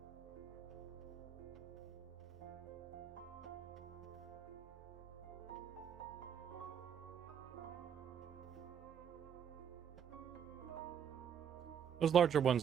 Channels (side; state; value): left; quieter; 8.3 dB